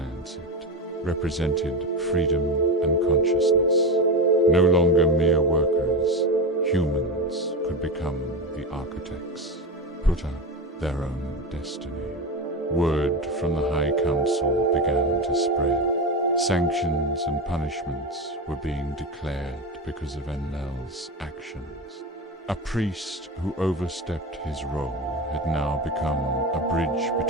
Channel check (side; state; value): both; normal; correlation 0.19